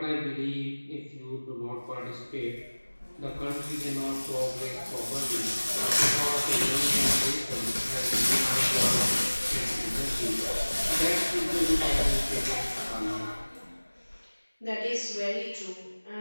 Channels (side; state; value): both; inverted; correlation -1.00